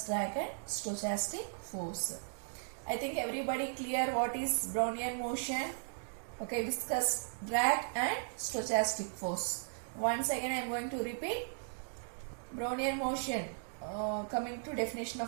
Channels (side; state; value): left; silent; digital silence